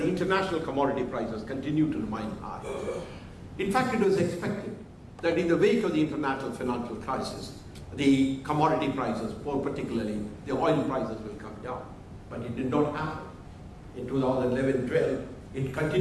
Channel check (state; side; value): identical; both; correlation 1.00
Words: international commodity prices continue to remain high. In fact, it was expected that in the wake of the international financial crisis, the commodity prices, more particularly the oil prices, will come down. But it did not happen. In 2011-12, it